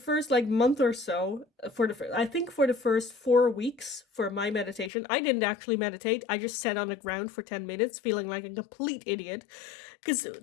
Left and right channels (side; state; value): right; drops out; at 4.9 s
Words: like month or so. I think for the first 4 weeks for my meditation, I didn't actually meditate. I just sat on the ground for 10 minutes feeling like a complete idiot, because